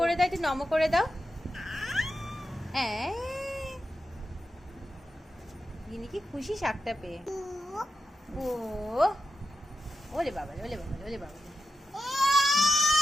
করে দাও, একটু নমো করে দাও। গিনি কি খুশি শাকটা পেয়ে। ও ওলে বাবা, ওলে বাবা, ওলে বাবা,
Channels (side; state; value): both; normal; correlation 0.90